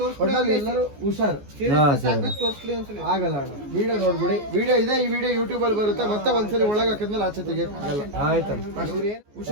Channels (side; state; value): left; late; 14 ms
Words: ಎಲ್ಲರೂ ಹುಷಾರ್ ಆಗಲ್ಲ ಅಣ್ಣ. ವಿಡಿಯೋ ನೋಡ್ಬಿಡಿ, ವಿಡಿಯೋ ಇದೆ, ಈ ವಿಡಿಯೋ ಯೂಟ್ಯೂಬ್ ಅಲ್ಲಿ ಬರುತ್ತೆ. ಮತ್ತೆ ಒಂದ್ಸಲಿ ಒಳಗೆ ಹಾಕಿದ್ಮೇಲೆ ಆಚೆ ತೆಗಿಯಲ್ಲ. ಆಯ್ತು